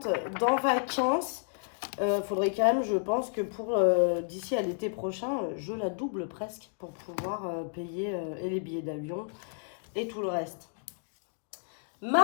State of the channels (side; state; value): right; silent; digital silence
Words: dans vacances. Faudrait quand même, je pense que pour d'ici à l'été prochain, je la double presque pour pouvoir payer et les billets d'avion et tout le reste.